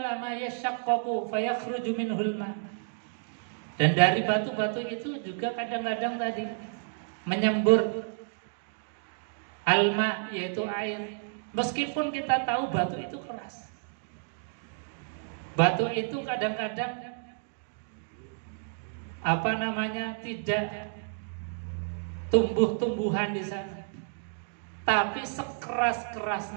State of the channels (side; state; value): left; silent; digital silence